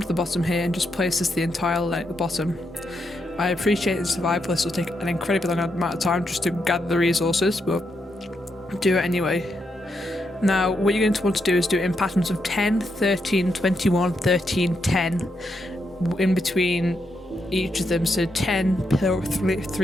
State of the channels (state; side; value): normal; both; correlation 0.82